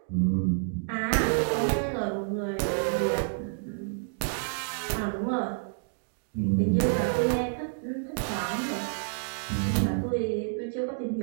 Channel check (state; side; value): silent; left; digital silence